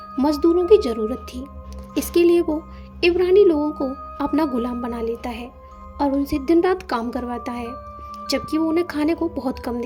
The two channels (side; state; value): both; identical; correlation 1.00